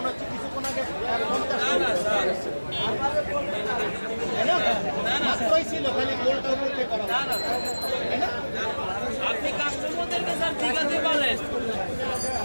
হচ্ছে কিছুক্ষণ আগে 50 মাত্রই ছিল, খালি গোলটা উঠে করা। আপনি কাস্টমারদেরকে স্যার ঠিকাতে বলেন।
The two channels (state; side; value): inverted; both; correlation -1.00